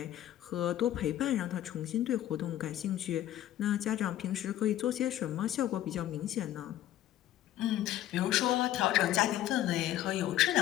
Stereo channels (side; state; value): right; quieter; 12.9 dB